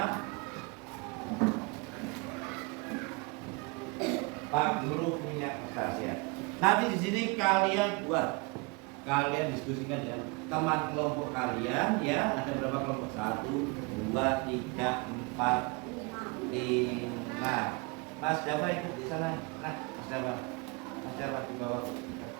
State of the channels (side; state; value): left; quieter; 29.1 dB